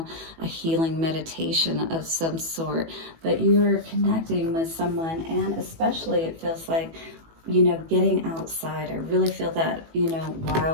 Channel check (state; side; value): late; left; 18 ms